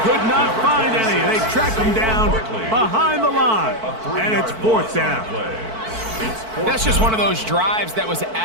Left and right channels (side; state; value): left; late; 4.5 ms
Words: could not find any. They track him down behind the line, and it's fourth down. That's just one of those drives that was